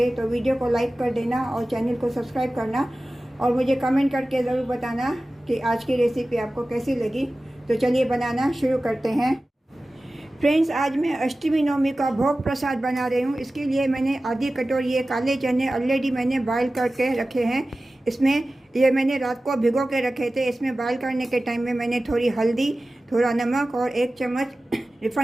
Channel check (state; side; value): normal; both; correlation 0.96